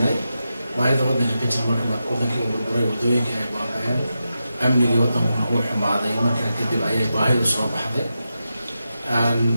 baahida wadanka ka jirta marka wadankii uu burburay wadooyinka ay baaba'een amniga wadanka uu xumaaday markaa kadib ayay baahidu soo baxday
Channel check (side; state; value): both; inverted; correlation -0.89